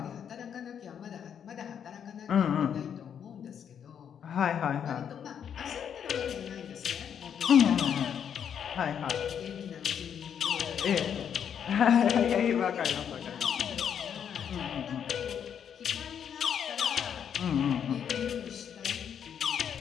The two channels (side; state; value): right; quieter; 8.3 dB